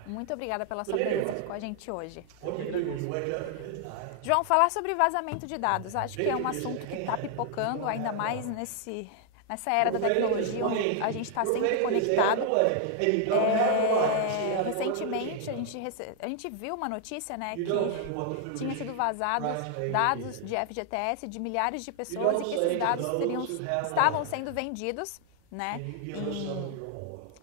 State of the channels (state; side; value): different; both; correlation 0.00